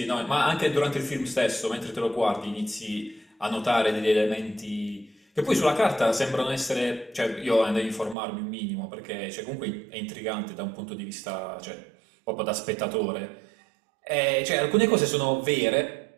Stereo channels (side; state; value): left; drops out; at 8.2 s